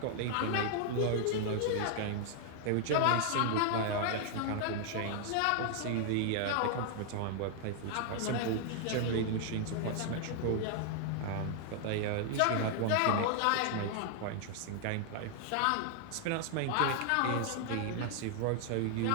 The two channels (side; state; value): both; different; correlation 0.00